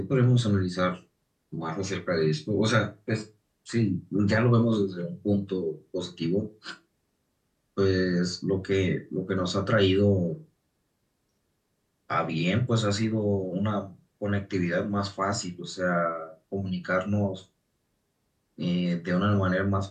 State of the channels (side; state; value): both; identical; correlation 1.00